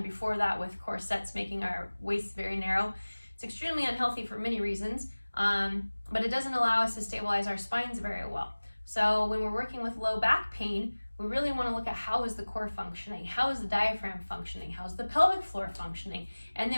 before that with corsets making our waists very narrow. It's extremely unhealthy for many reasons, but it doesn't allow us to stabilize our spines very well. So when we're working with low back pain, we really want to look at how is the core functioning, how is the diaphragm functioning, how's the pelvic floor functioning, and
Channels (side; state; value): both; inverted; correlation -1.00